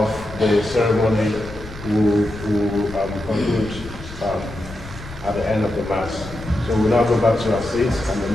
the ceremony will conclude at the end of the Mass. So we'll now go back to our seats and the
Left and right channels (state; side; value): noise; left; rumble, 14 dB below the sound